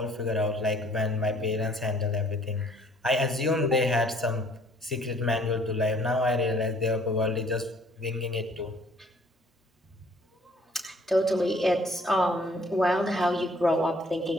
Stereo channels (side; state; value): both; normal; correlation 0.59